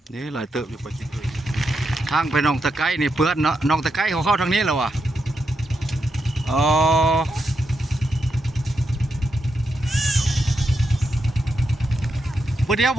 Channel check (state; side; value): normal; both; correlation 0.84